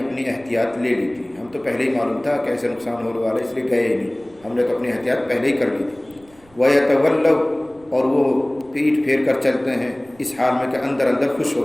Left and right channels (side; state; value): right; noise; rumble, 29 dB below the sound